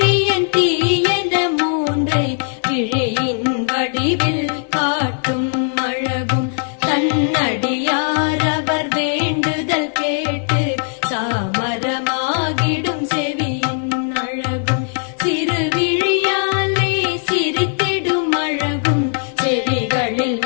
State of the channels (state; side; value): silent; right; digital silence